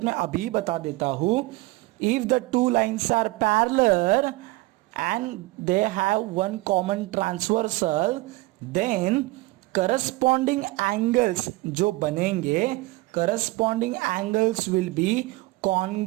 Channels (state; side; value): quieter; left; 20.8 dB